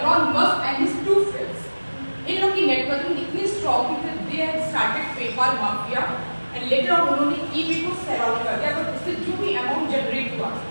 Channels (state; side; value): inverted; both; correlation -1.00